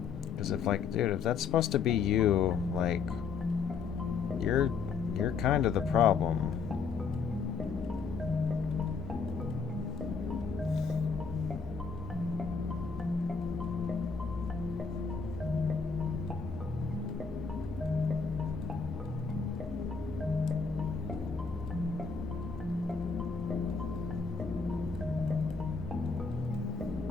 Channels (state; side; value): quieter; right; 5.3 dB